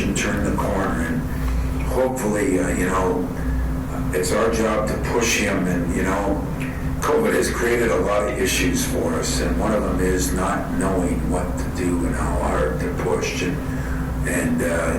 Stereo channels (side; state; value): both; identical; correlation 1.00